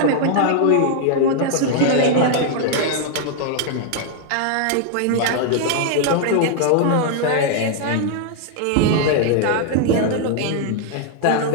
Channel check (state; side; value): different; both; correlation 0.00